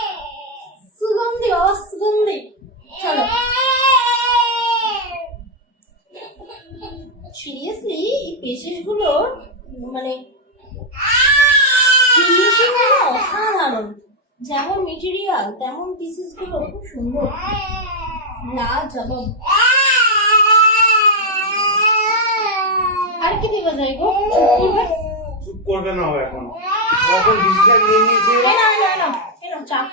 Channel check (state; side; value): normal; both; correlation 0.00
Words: সুগন্ধি অসুগন্ধি। চলো সিরিয়াসলি এই পেশেস গুলোর মানে ফিনিশিং গুলো অসাধারণ, যেমন মেটেরিয়াল তেমন পিসেস গুলো খুব সুন্দর, লাজবাব। আর কি দেওয়া যায় গো? চুপ করবে না ও এখন, এখন ডিসিশন নিয়ে নিয়েছে। চা